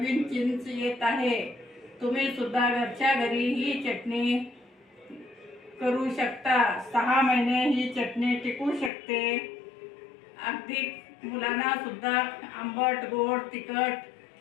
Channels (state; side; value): drops out; right; at 8.9 s